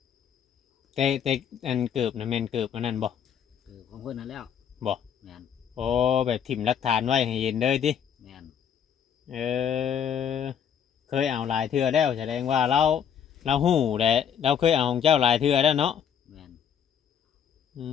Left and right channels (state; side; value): quieter; right; 8.3 dB